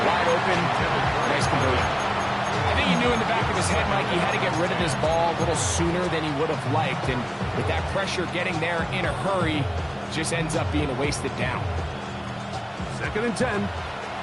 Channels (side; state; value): both; identical; correlation 1.00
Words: wide open, nice conversion. I think he knew in the back of his head, Mike, he had to get rid of this ball a little sooner than he would have liked. And with that pressure getting there in a hurry, just ends up being a wasted down. 2nd and 10.